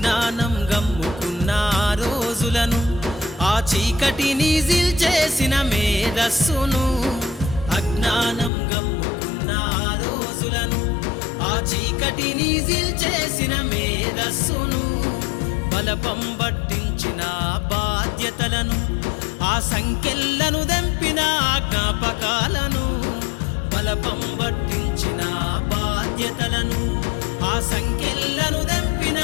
గమ్ముకున్న ఆ రోజులను ఆ చీకటిని జిల్చేసిన మేధస్సును అజ్ఞానం గమ్ముకున్న ఆ రోజులను ఆ చీకటిని జిల్చేసిన మేధస్సును బలపం పట్టించిన బాధ్యతలను ఆ సంఖ్యలను దెంపిన జ్ఞాపకాలను బలపం పట్టించిన బాధ్యతలను ఆ సంఖ్యలను దెంపిన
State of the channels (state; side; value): drops out; right; at 8.5 s